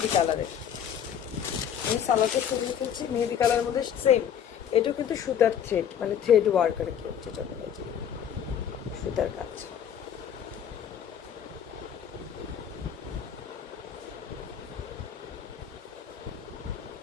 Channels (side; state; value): right; quieter; 8.8 dB